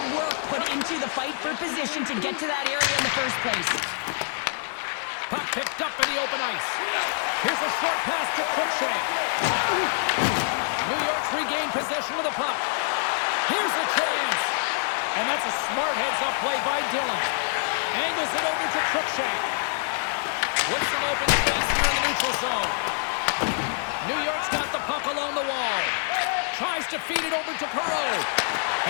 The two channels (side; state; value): right; silent; digital silence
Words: work put into the fight for position to get to that area in the first place. Puck picked up in the open ice. Here's a short pass to Cruikshank. possession of the puck. Here's a chance. And that's a smart heads-up play by Dillon. Angles it over to Cruikshank. With some open space here in the neutral zone. New York's got the puck along the wall. Tries to feed it over to Perreault.